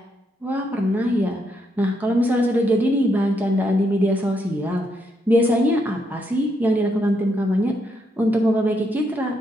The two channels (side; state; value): both; normal; correlation 0.78